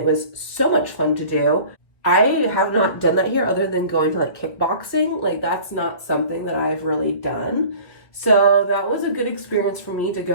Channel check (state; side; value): late; right; 1.9 ms